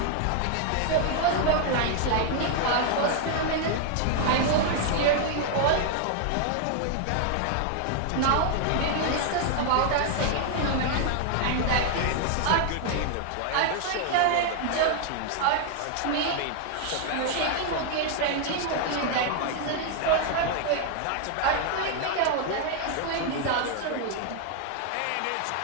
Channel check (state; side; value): different; both; correlation 0.00